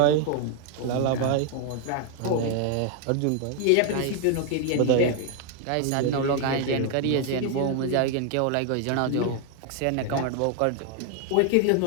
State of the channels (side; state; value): both; different; correlation 0.00